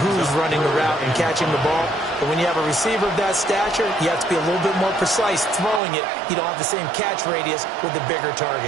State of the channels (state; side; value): drops out; left; at 5.8 s